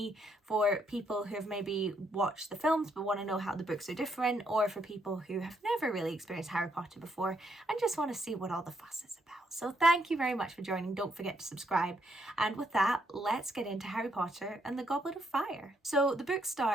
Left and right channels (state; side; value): normal; both; correlation 0.75